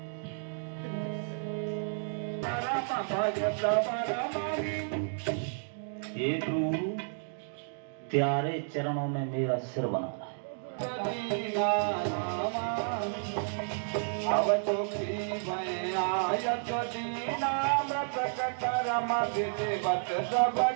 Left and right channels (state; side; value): silent; left; digital silence